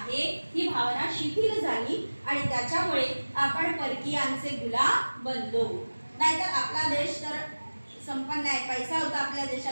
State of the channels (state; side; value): inverted; both; correlation -1.00